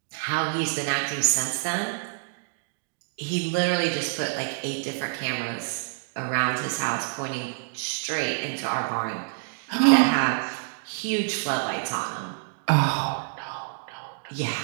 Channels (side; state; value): left; silent; digital silence